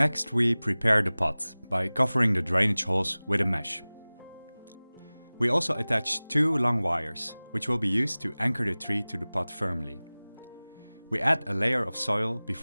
we prepare the pot by covering the drainage holes with a mesh. We also attach 2 long wires, which will be used to anchor the tree to the pot firmly. We add a layer of soil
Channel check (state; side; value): inverted; both; correlation -0.99